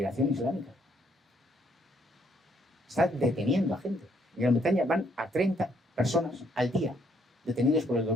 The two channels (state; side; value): normal; both; correlation 0.69